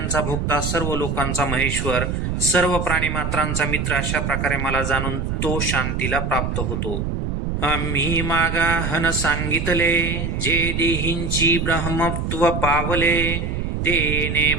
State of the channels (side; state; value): right; noise; rumble, 2 dB below the sound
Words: भोक्ता, सर्व लोकांचा महेश्वर, सर्व प्राणीमात्रांचा मित्र, अशा प्रकारे मला जाणून तो शांतीला प्राप्त होतो. आम्ही मागाहन सांगितले, जे देहींची ब्रह्मत्व पावले, तेने